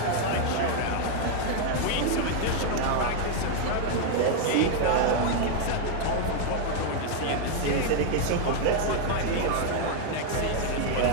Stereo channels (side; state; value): both; different; correlation 0.00